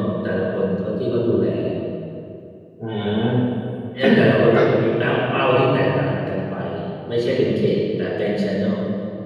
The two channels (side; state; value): both; identical; correlation 1.00